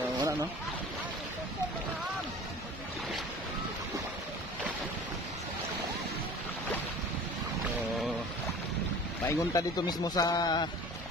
Wala no. Paingon ta dito mismo sa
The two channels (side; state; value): both; normal; correlation 0.42